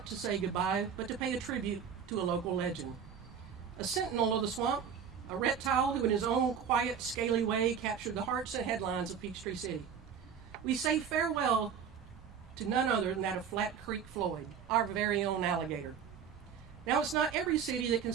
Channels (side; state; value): left; quieter; 7.4 dB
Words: to say goodbye, but to pay a tribute to a local legend. A sentinel of the swamp, a reptile who in his own quiet, scaly way captured the hearts and headlines of Peachtree City. We say farewell to none other than that of Flat Creek Floyd, our very own alligator. Now, it's not every city that can